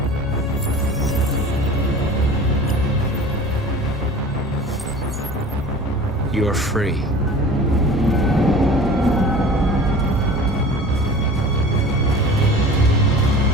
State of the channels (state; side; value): normal; both; correlation 0.41